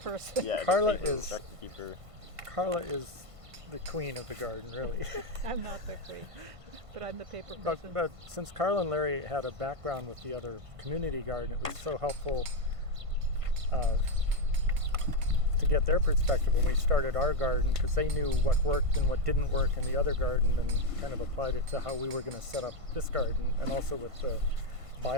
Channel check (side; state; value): left; late; 1.5 ms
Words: yeah, Carla paper, is- record keeper. Carla is the queen of the garden, really. I'm not the queen, but I'm the paper but person. but since Carla and Larry had a background with the other community garden, it was so helpful to get their perspective when we started our garden, because they knew what worked and what didn't work in the other garden and kind of applied it to how we were going to set up this garden, and also with the